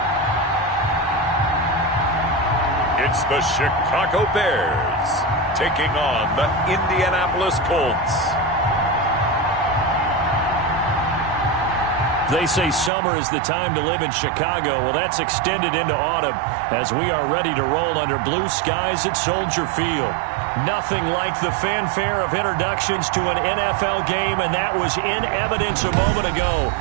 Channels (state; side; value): drops out; left; at 12.9 s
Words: It's the Chicago Bears taking on the Indianapolis Colts. They say summer is the time to live in Chicago. Well, that's extended into autumn as we are ready to roll under blue skies at Soldier Field. Nothing like the fanfare of introductions to an NFL game, and that was in evidence a moment ago.